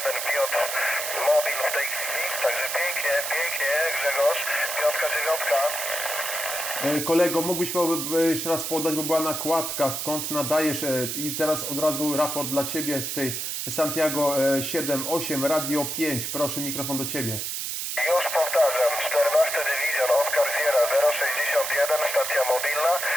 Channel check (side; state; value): right; noise; hiss, 3 dB below the sound